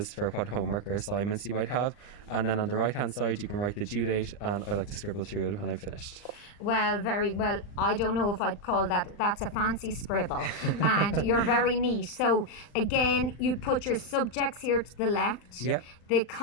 for what homework or assignments you might have, and then on the right hand side you can write the due date, and I like to scribble through it when I'm finished. Well, very well. I don't know if I'd call that's a fancy scribble. And you're very neat. So again, you'd put your subjects here to the left. Yeah. the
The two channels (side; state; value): right; late; 39 ms